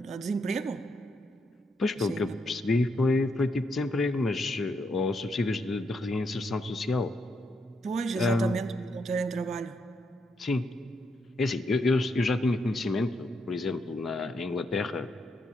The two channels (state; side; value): normal; both; correlation 0.79